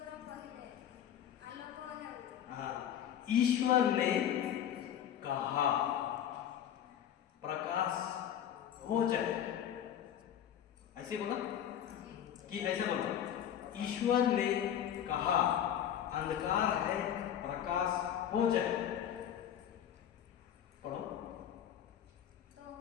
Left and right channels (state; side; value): quieter; right; 10.0 dB